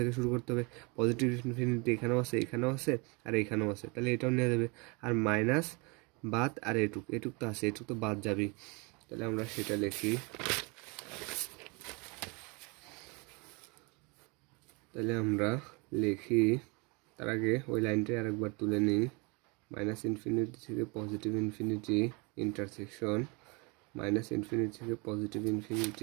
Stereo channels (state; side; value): quieter; left; 29.5 dB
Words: শুরু করতে হবে। পজিটিভ ইনফিনিটি এখানেও আছে, এখানেও আছে, আর এখানেও আছে, তাহলে এটাও নেওয়া যাবে। আর মাইনাস বাদ, আর এটুক তো আছে, এটুক তো বাদ যাবে, তাহলে আমরা সেটা লিখি। তাহলে আমরা লিখি, তার আগে ওই লাইনটা আরেকবার তুলে নিই। -∞ থেকে পজিটিভ ইনফিনিটি ইন্টারসেকশন, -∞ থেকে পজিটিভ